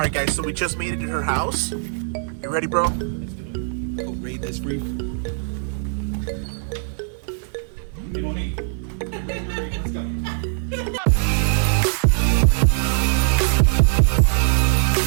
guys, so we just made it to her house. You ready, bro? Let's do it. Go raid this reef. Hey, Monique. Let's go.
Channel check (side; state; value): left; silent; digital silence